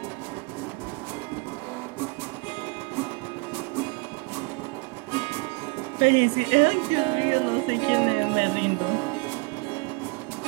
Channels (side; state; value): left; quieter; 28.6 dB